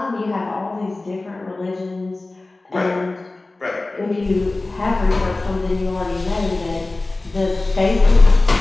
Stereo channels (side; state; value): right; quieter; 3.1 dB